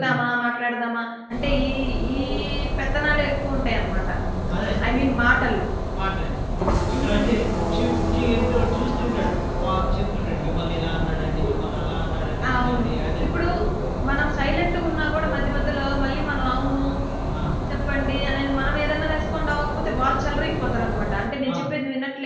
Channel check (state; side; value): identical; both; correlation 1.00